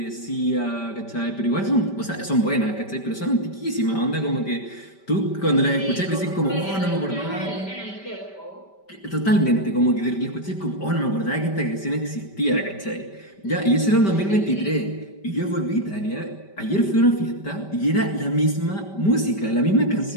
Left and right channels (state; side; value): late; right; 5.1 ms